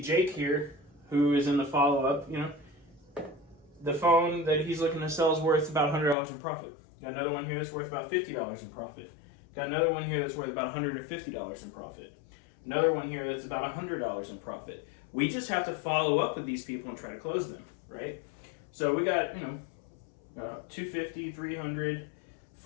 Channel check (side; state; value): right; drops out; at 6.2 s